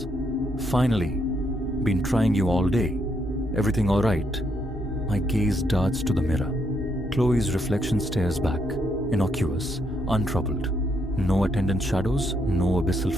finally. Been trying you all day. Everything all right? My gaze darts to the mirror. Chloe's reflection stares back, innocuous, untroubled. No attendant shadows, no abyssal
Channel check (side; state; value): both; normal; correlation 0.76